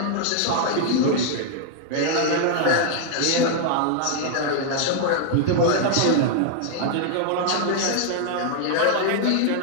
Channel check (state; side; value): different; both; correlation 0.00